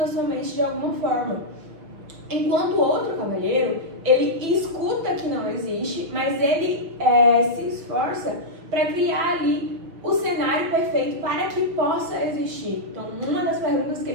a sua mente de alguma forma. Enquanto o outro cavalheiro, ele escuta que não existe, mas ele se esforça para criar ali o cenário perfeito para que possa existir. Então, uma das perguntas que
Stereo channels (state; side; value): late; left; 6.1 ms